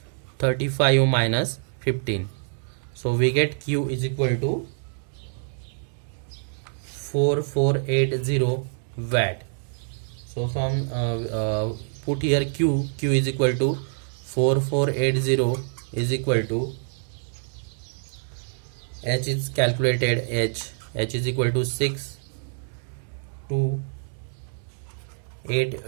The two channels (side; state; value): left; silent; digital silence